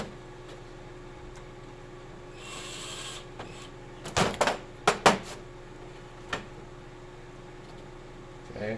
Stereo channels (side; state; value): both; identical; correlation 1.00